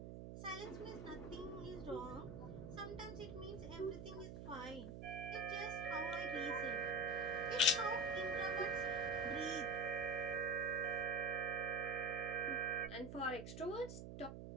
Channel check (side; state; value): right; noise; hum, 9 dB below the sound